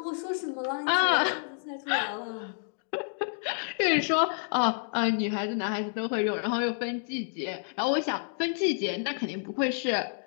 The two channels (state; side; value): silent; right; digital silence